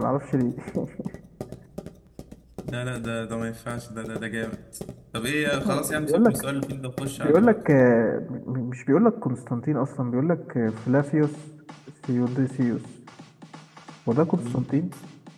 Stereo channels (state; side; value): identical; both; correlation 1.00